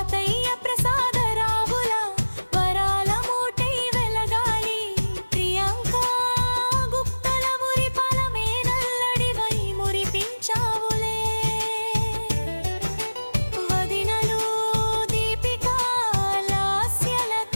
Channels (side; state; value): both; inverted; correlation -1.00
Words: ప్రసాదరావుల వరాల మూటై వెలగాలి ప్రియాంక గుప్తల మురిపాల మేనల్లడివై మురిపించావులే వదినలు దీపిక